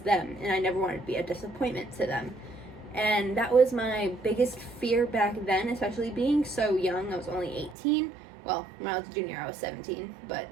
them and I never wanted to be a disappointment to them. And that was my biggest fear back then, especially being so young. I was only 18. Well, when I was a junior, I was 17. But,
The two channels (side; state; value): left; drops out; at 7.8 s